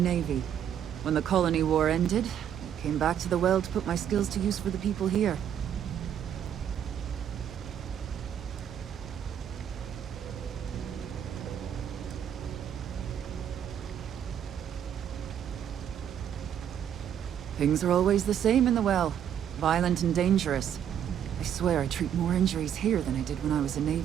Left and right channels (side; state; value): left; quieter; 9.4 dB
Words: When the colony war ended, I came back to the well to put my skills to use for the people here. Things are always the same in the well. Violent and dangerous. I swear I treat more injuries here than I did when I was a